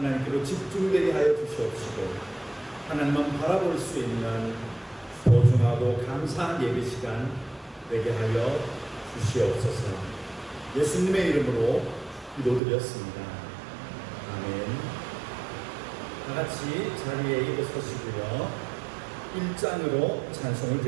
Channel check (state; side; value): drops out; left; at 12.6 s